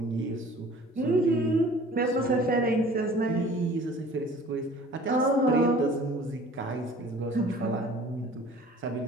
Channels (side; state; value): both; normal; correlation 0.48